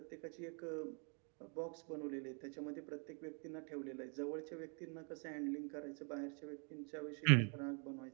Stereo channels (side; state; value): left; quieter; 38.2 dB